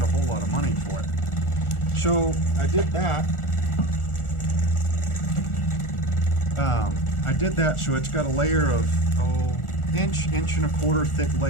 a whole lot of money for it. So I did that. So it's got a layer of inch and a quarter thick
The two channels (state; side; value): late; right; 1.4 ms